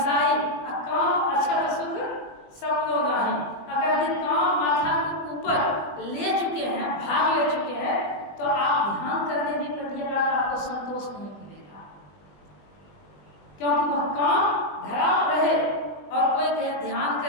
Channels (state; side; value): late; right; 20 ms